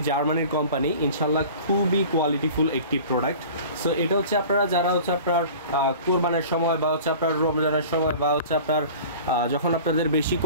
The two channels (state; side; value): inverted; both; correlation -0.41